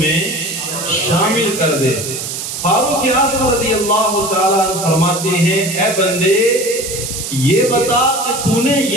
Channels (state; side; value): noise; right; hiss, 6 dB below the sound